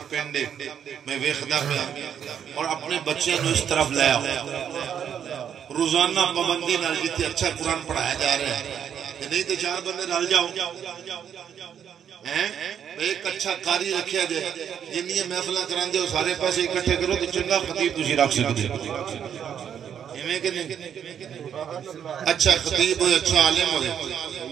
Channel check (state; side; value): quieter; left; 8.6 dB